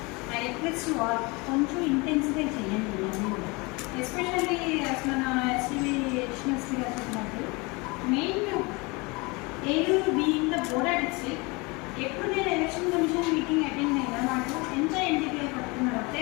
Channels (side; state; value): right; quieter; 26.6 dB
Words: ఐ రిక్వెస్ట్ కొంచెం ఇంటెన్సిఫై చేయండి. ఎస్పెషల్లీ అసలు నా ఎస్టీవీ ఎడిషనల్స్కి చెప్పినట్టు main Eluru being the border district ఎప్పుడు నేను ఎలక్షన్ కమిషన్ మీటింగ్ అటెండ్ అయినా నాకు ఎంత ఎన్టీపీఐ పడుతున్నారు ఒకే